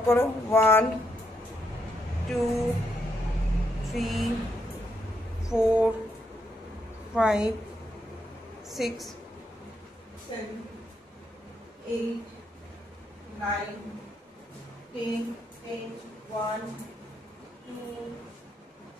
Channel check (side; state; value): both; normal; correlation 0.78